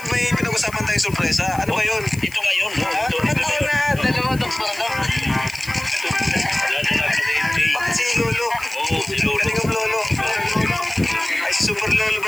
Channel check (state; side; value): noise; left; hiss, 18 dB below the sound